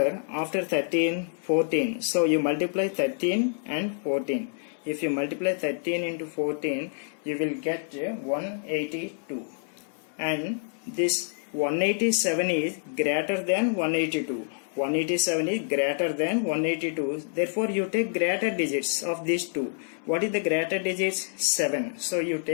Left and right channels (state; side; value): silent; right; 57 dB below the other